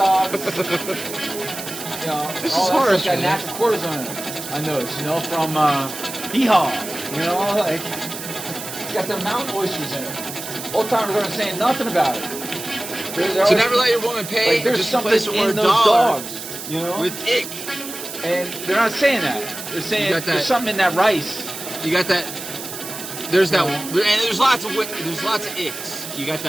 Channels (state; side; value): noise; right; hiss, 9 dB below the sound